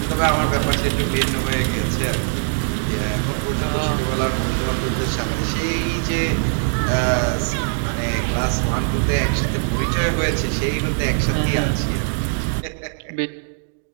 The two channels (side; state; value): left; silent; 65 dB below the other